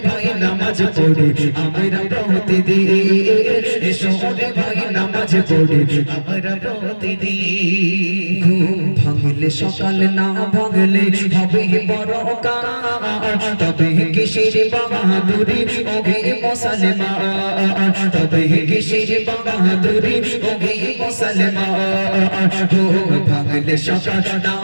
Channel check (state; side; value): inverted; both; correlation -1.00